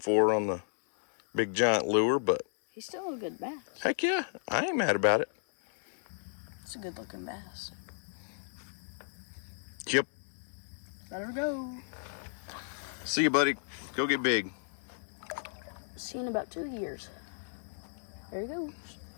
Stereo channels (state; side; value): silent; right; digital silence